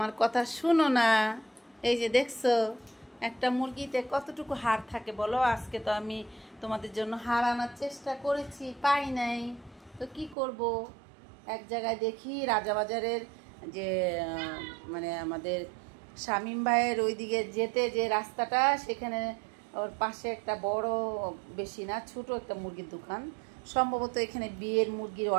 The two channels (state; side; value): drops out; left; at 10.4 s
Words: কথা শুনো না। এই যে দেখছো, একটা মুরগিতে কতটুকু হাড় থাকে বলো। আজকে তো আমি তোমাদের জন্য হাড় আনার চেষ্টা করেছি, পাই নাই, তো কি করব। এক জায়গায় দেখি রাজাবাজারের যে মানে আমাদের শামীম ভাইয়ের ওইদিকে যেতে যে রাস্তাটা, সেখানে ওর পাশে একটা বড়, বেশি না ছোট একটা মুরগির দোকান। সম্ভবত এখানে বিয়ের মুরগির